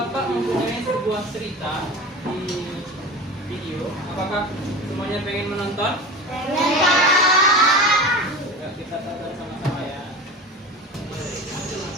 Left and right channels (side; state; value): both; normal; correlation 0.31